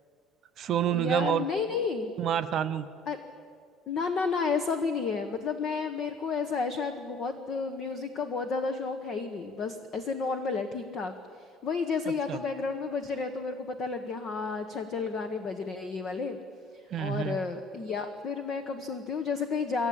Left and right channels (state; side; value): normal; both; correlation 0.51